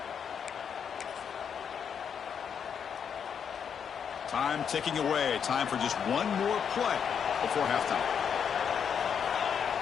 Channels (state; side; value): quieter; right; 7.4 dB